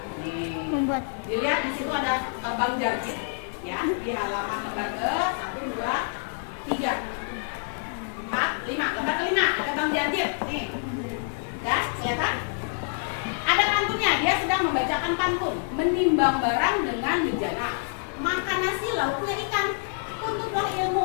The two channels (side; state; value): right; silent; digital silence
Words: Nih. Membuat. Dilihat di situ ada Bang Jarjit ya, di halaman lembar ke 1 2 3 4 5, lembar ke-5 ada Bang Jarjit. Nih. Ya, kelihatan? Ada pantunnya, dia sedang membacakan pantun. Menimbang barang dengan bejana, makan nasi lauknya ikan. Tuntutlah